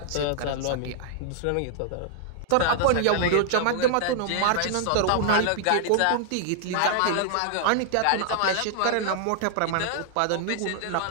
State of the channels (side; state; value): both; different; correlation 0.00